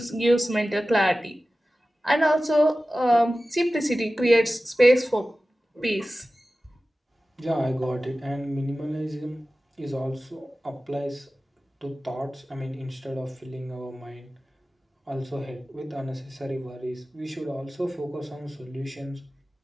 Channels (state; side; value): normal; both; correlation 0.96